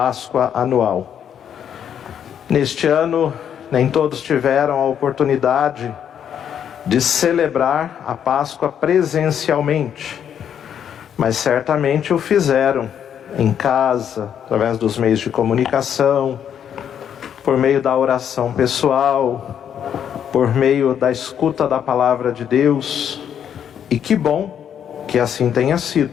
anual. Neste ano, nem todos tiveram a oportunidade de celebrar a Páscoa presencialmente, mas certamente o fizeram em casa, através dos meios de comunicação, por meio da oração pessoal, por meio da escuta da palavra de Deus. E que bom que assim tenha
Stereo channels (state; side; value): quieter; right; 8.9 dB